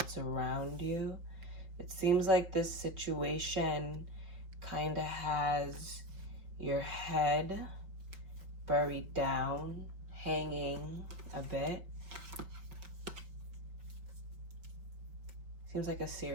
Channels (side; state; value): left; late; 5.0 ms